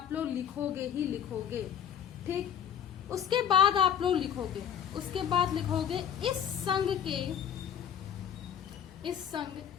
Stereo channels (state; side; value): quieter; right; 9.0 dB